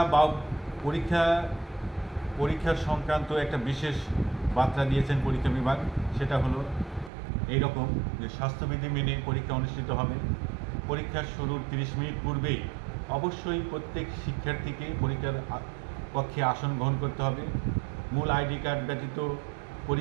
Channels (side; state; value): left; drops out; at 7.1 s